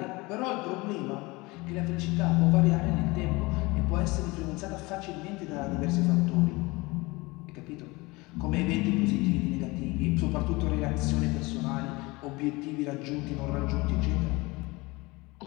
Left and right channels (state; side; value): quieter; right; 23.6 dB